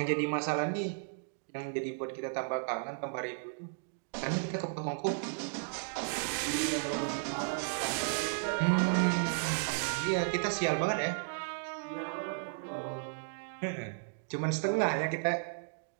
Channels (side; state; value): left; silent; digital silence